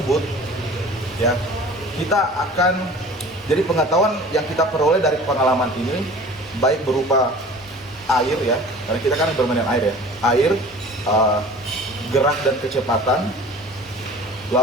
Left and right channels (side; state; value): both; normal; correlation 0.43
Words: ya, kita akan, jadi pengetahuan yang kita peroleh dari pengalaman ini baik berupa air ya, karena kita kan bermain air ya, air, gerak dan kecepatan.